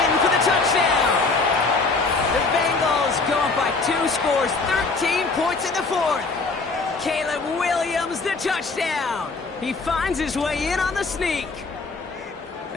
for the touchdown. The Bengals go up by 2 scores, 13 points in the 4th. Caleb Williams, the touchdown. He finds his way in on the sneak.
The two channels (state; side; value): quieter; right; 3.9 dB